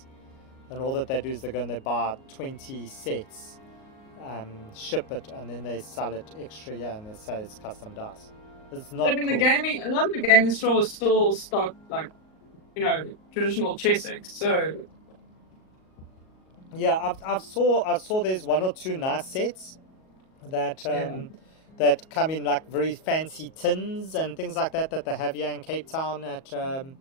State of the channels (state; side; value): late; right; 38 ms